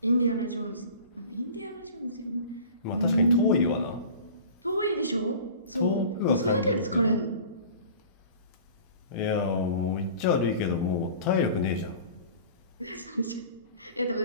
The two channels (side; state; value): both; inverted; correlation -0.41